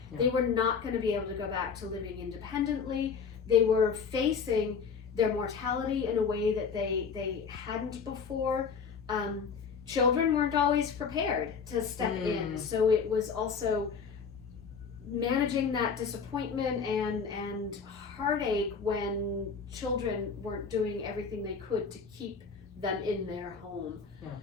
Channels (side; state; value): right; quieter; 5.8 dB